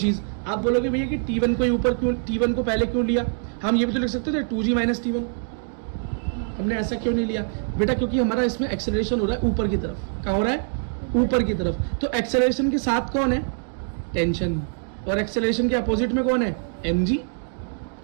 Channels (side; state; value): left; silent; 62 dB below the other